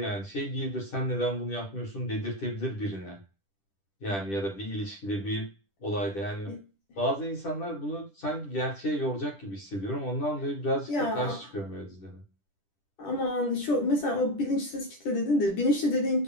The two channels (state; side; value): late; right; 10 ms